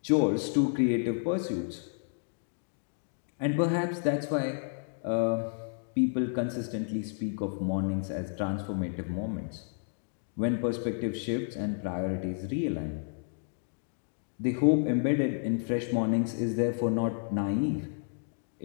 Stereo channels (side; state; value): right; silent; digital silence